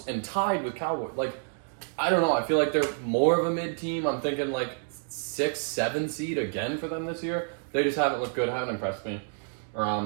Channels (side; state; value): left; silent; 59 dB below the other